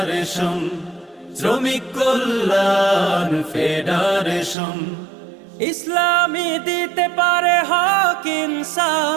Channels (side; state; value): left; drops out; at 4.5 s